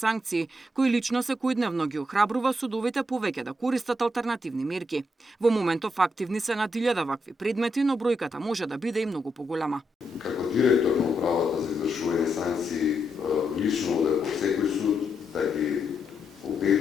кој лично секојдневно ги охрабрува судовите повеќе да користат алтернативни мерки. Во моментов активни се над 1000 вакви предмети, но бројката може да биде и многу поголема. Како директор на управата за извршување санкции, лично одев во секој суд да ги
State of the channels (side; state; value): both; normal; correlation 0.81